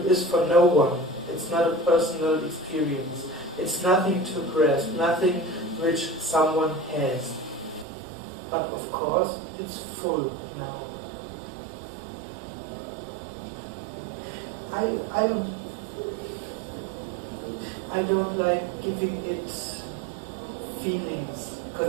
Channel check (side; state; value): left; drops out; at 7.9 s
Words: is for no one. It's not a personal experience. It's nothing to grasp, nothing which someone has. But of course, it's full now. I don't like giving it feelings,